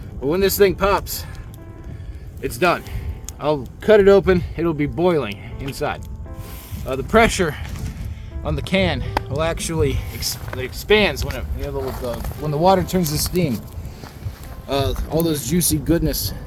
But when this thing pops, it's done. I'll cut it open. It'll be boiling inside. The pressure on the can will actually it expands when when the water turns to steam. All those juicy goodness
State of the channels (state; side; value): identical; both; correlation 1.00